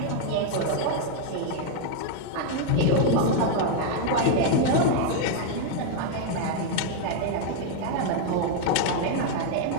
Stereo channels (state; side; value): different; both; correlation 0.00